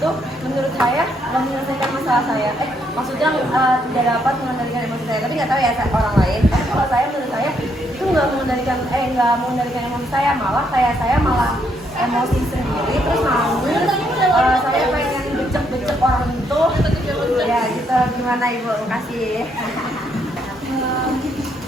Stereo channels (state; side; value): normal; both; correlation 0.74